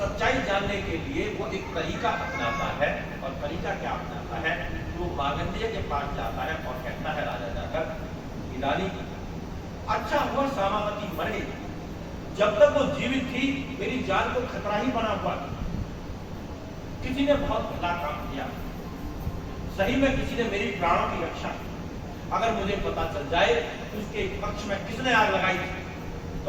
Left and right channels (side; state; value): both; identical; correlation 1.00